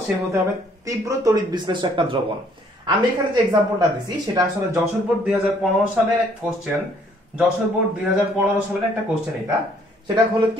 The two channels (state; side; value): normal; both; correlation 0.63